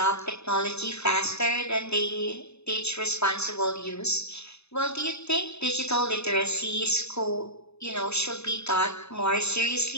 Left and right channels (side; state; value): right; late; 0.80 ms